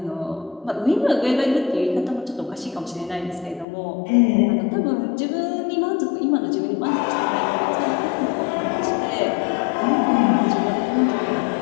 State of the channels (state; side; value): drops out; right; at 3.7 s